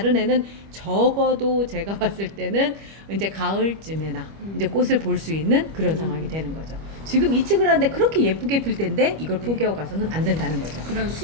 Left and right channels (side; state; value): left; late; 25 ms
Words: 애는 적어도 제가 봤을 때는 이제 가을쯤에나 이제 꽃을 볼 수 있는 그런 상황이 되는 거죠. 지금 이측을 하는데 그렇게 예쁘게 필 텐데 이걸 포기하고 가서는 안 된다는 거죠. 그럼